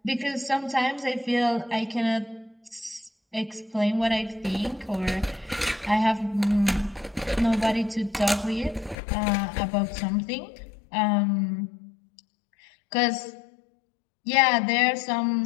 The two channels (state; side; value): drops out; right; at 9.0 s